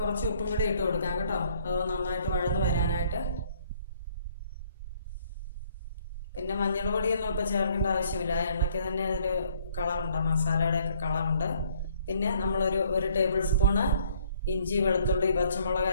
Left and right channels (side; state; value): both; inverted; correlation -0.63